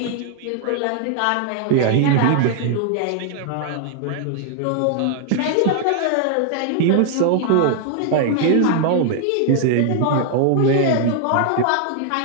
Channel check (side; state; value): both; different; correlation 0.00